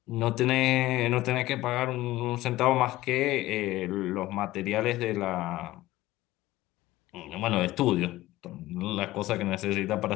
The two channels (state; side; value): quieter; right; 17.0 dB